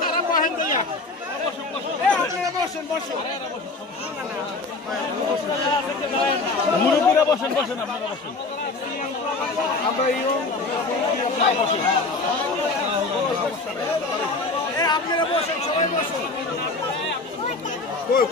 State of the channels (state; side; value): quieter; right; 3.5 dB